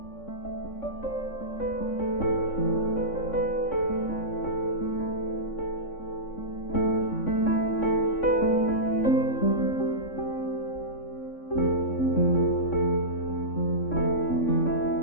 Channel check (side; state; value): right; late; 3.6 ms